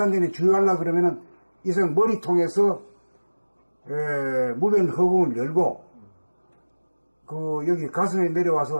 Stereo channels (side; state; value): both; inverted; correlation -1.00